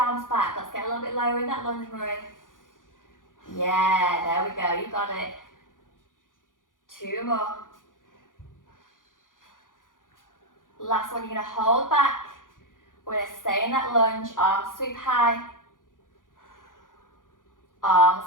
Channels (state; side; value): late; right; 0.89 ms